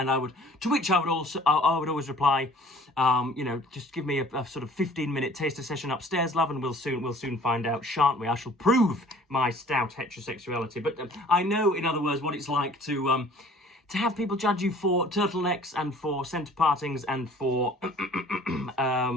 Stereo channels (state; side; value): normal; both; correlation 0.52